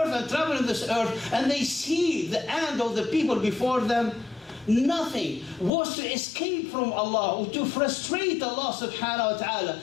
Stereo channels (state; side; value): drops out; right; at 5.7 s